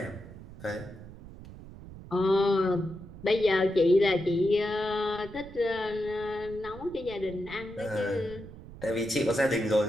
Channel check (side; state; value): right; noise; rumble, 16 dB below the sound